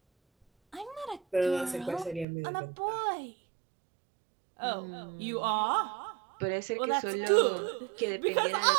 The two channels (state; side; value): drops out; left; at 2.2 s